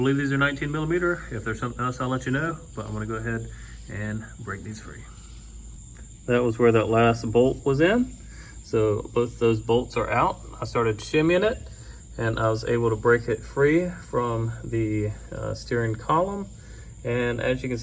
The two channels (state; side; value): identical; both; correlation 1.00